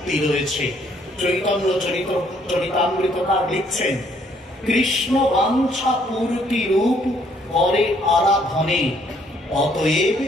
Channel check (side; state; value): both; normal; correlation 0.66